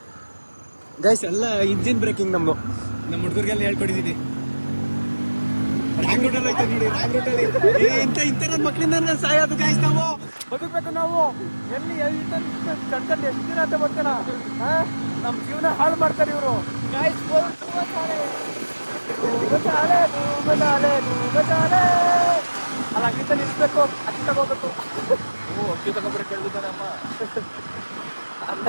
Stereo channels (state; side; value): inverted; both; correlation -1.00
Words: ಗೈಸ್. ಎಲ್ಲ ಇಂಜಿನ್ ಬ್ರೇಕಿಂಗ್ ನಮ್ಮ ಹುಡುಗರಿಗೆಲ್ಲ ಹೇಳ್ಕೊಟ್ಟಿದ್ದೀನಿ. ರಾಂಗ್ ರೂಟಲ್ಲಿ ಐತೆ ನೋಡಿ, ರಾಂಗ್ ರೂಟಲ್ಲಿ. ಇಂಥ ನನ್ನ ಮಕ್ಕಳಿಂದ ಸಾಯೋದು ಗೈಸ್. ನಾವು ಬದುಕಬೇಕು. ನಾವು ಎಲ್ಲಿ ಕಣ್ಕಂಡು ಎಷ್ಟು ದಿನ ಅಂತ ಬರ್ತಾನ. ನಮ್ಮ ಜೀವನ ಹಾಳು ಮಾಡ್ತಾರೆ ಇವರು ಗೈಸ್. ಅಲ್ಲ ಅಕ್ಕಿಂತ ನಿಲ್ಸ್ಬೇಕು, ಅಕ್ಕಿ ತಗೋಬೇಕು. ಅಕ್ಕಿ ತಗೊಂಡ್ರೆ ಕೇಳಿದ್ದಾನೆ ಅಮ್ಮ. ಅದು